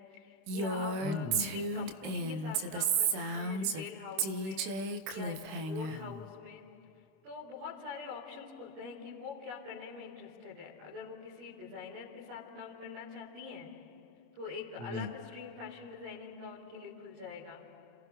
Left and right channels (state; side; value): late; left; 25 ms